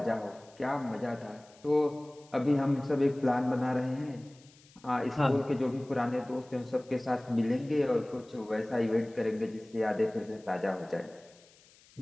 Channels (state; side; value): noise; left; hiss, 27 dB below the sound